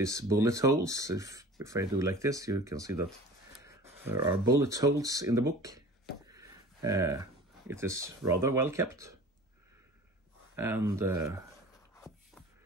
bullet holes. If I do like this, you can see that there are bullet holes in the book. It is rather well kept, and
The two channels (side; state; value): both; normal; correlation 0.42